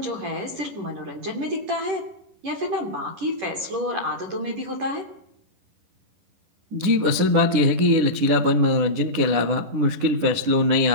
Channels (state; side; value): late; left; 10 ms